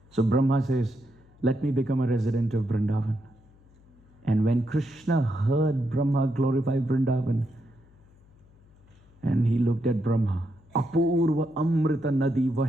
So Brahma says, let me become a resident of Vrindavan. And when Krishna heard Brahma glorify Vrindavan, and he looked at Brahma, Apurva Amrita Nadi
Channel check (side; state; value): left; noise; hum, 28 dB below the sound